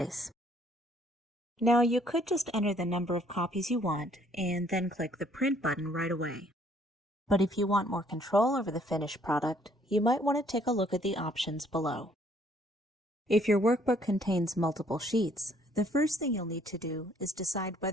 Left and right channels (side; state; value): both; normal; correlation 0.63